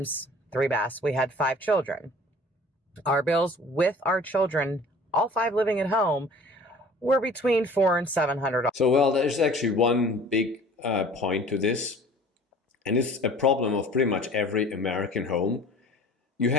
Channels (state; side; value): normal; both; correlation 0.47